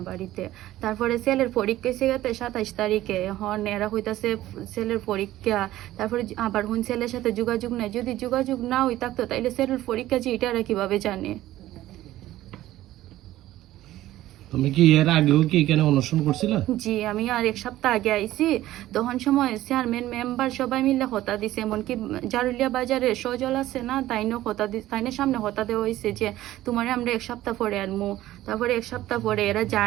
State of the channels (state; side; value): quieter; left; 14.9 dB